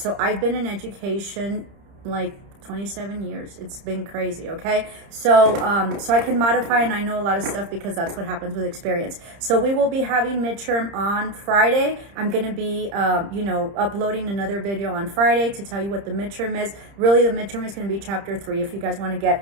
I've been in education like 27 years. It's been crazy. Okay. So, so I can modify, and I know a lot of stuff because that's what happens with experience. So we will be having midterm on Friday. I'm going to be, uploading another video on Friday to tell you what the midterm is. Really, the midterm is going to be chapter 3 if you guys want to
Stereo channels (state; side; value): late; left; 30 ms